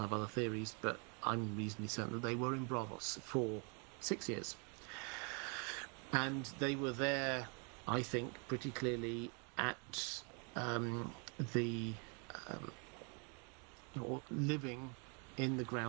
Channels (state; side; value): quieter; left; 36.0 dB